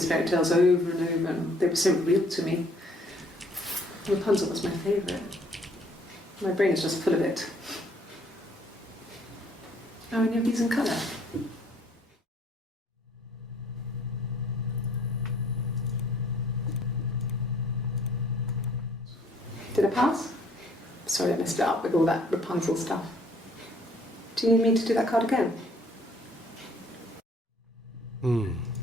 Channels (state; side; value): normal; both; correlation 0.60